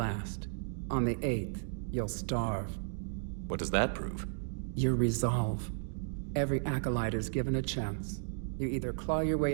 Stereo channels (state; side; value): silent; left; digital silence